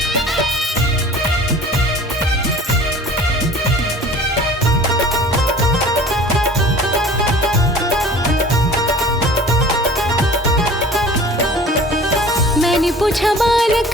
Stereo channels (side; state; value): both; normal; correlation 0.44